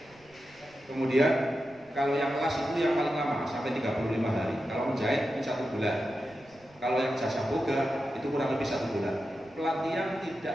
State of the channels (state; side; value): noise; right; rumble, 29 dB below the sound